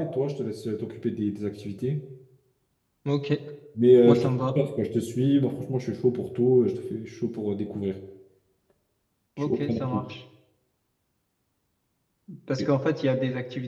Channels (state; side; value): identical; both; correlation 1.00